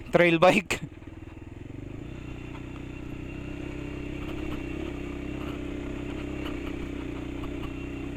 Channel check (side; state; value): both; identical; correlation 1.00